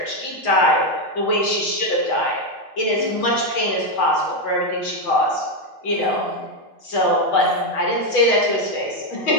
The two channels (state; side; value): late; right; 7.2 ms